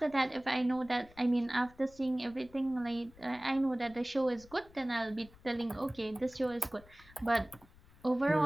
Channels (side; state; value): left; noise; rumble, 24 dB below the sound